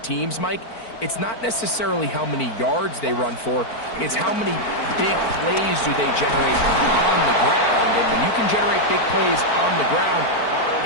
teams, Mike, it's not necessarily how many yards they run for, it's how many big plays do they generate on the ground. And when you can generate big plays on the ground,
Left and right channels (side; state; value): right; late; 4.5 ms